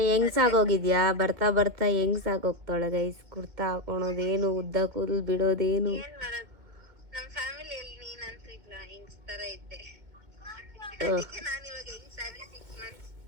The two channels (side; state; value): left; late; 2.2 ms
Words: ಹೆಂಗ್ಸಾಗೋಗಿದ್ಯಾ? ಬರ್ತಾ ಹೆಂಗ್ಸಾಗೋಗ್ತಾಳೆ ಗೈಸ್. ಕುರ್ತಾ ಹಾಕೊಳೋದೇನು, ಉದ್ದ ಕೂದಲು ಬಿಡೋದೇನು. ನಮ್ಮ ಫ್ಯಾಮಿಲಿಯಲ್ಲಿ ನೀನಂತೂ ಇಲ್ಲ, ಹೆಂಗ್ಸ್ ತರ ಇದ್ದೆ. ನಾನು ಇವಾಗ ಹೆಂಗ್ಸಾಗಿ 6 months.